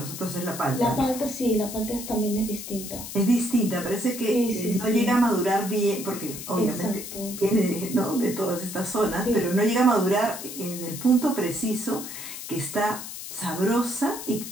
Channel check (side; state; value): left; noise; hiss, 9 dB below the sound